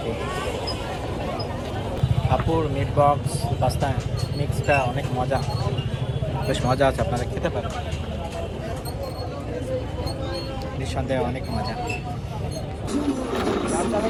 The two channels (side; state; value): both; identical; correlation 1.00